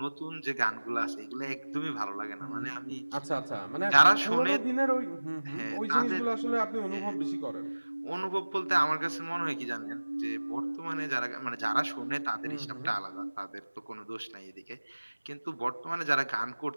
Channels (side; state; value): both; inverted; correlation -1.00